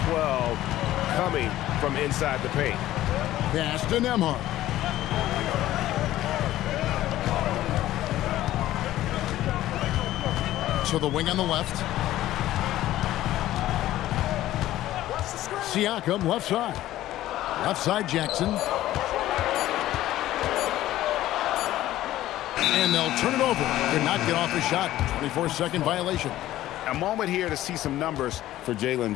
12 coming from inside the paint. Pass to Nembhard. So the wing on the left. Siakam, left side. Left side, Jackson. And they'll turn it over. Did not get off the shot. 24-second violation. A moment here to see some numbers for Jalen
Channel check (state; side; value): quieter; right; 14.4 dB